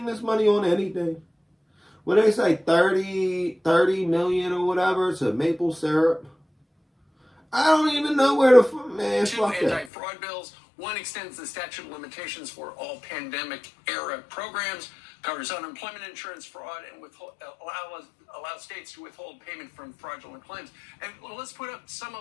this money on anything. When they say 30 million or whatever to maple syrup, I don't even know where the man. Two anti-fraud bills. One extends the statute of limitations for all pandemic-era programs, covers unemployment insurance fraud, and allows states to withhold payment from fraudulent claims. And let's put up some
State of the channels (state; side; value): drops out; right; at 9.9 s